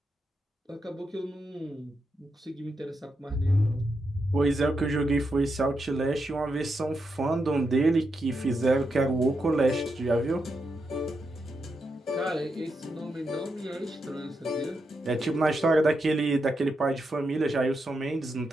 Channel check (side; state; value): both; normal; correlation 0.84